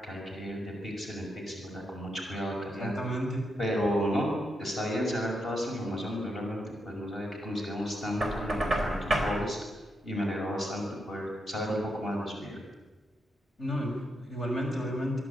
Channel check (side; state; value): both; normal; correlation 0.82